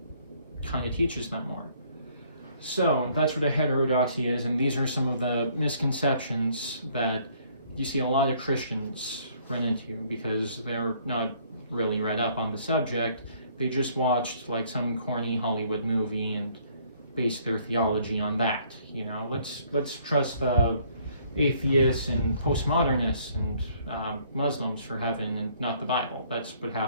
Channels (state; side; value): inverted; both; correlation -0.62